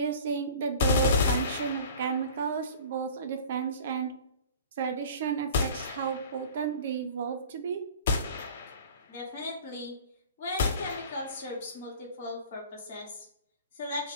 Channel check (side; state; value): both; inverted; correlation -0.42